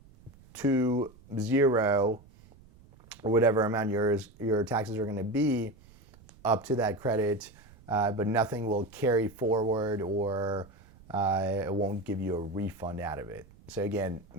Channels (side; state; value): right; noise; rumble, 25 dB below the sound